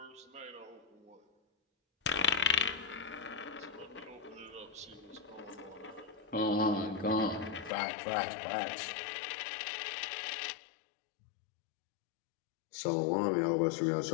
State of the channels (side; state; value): right; drops out; at 7.7 s